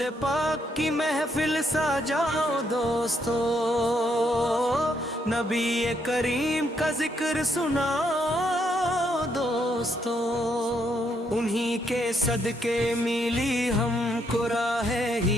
پاک کی محفل سجاؤ دوستو، نبی کریم کا ذکر سناؤ دوستو، انہی کے صدقے ملی ہم کو راہ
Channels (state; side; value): normal; both; correlation 0.75